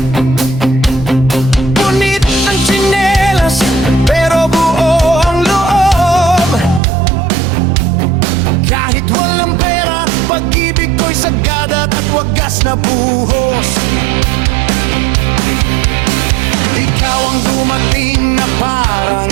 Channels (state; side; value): drops out; left; at 6.8 s